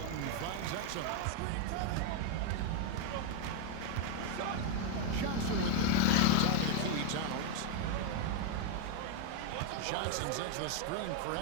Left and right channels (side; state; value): both; different; correlation 0.01